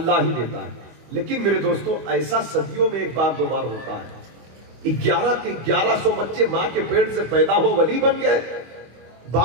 ही देता है। लेकिन मेरे दोस्तों, ऐसा सदियों में एक बार दो बार होता है। 1100 बच्चे मां के पेट से पैदा हो वली बन गए,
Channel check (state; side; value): late; left; 25 ms